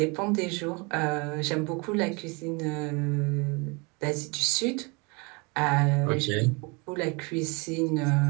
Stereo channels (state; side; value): quieter; left; 29.5 dB